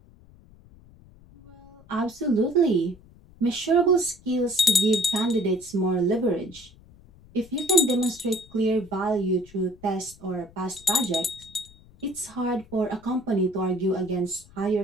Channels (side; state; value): left; noise; rumble, 24 dB below the sound